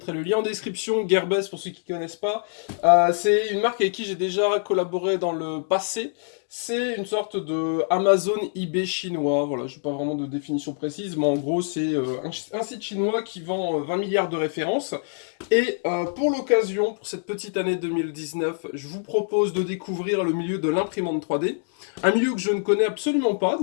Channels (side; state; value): right; silent; digital silence